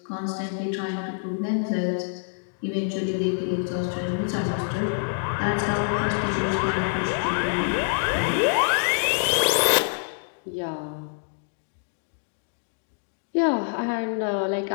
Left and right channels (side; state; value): right; silent; digital silence